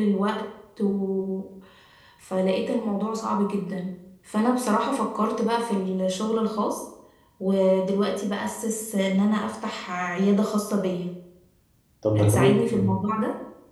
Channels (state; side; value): identical; both; correlation 1.00